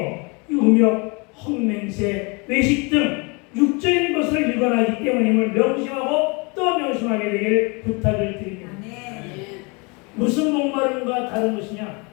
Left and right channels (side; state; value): right; quieter; 30.2 dB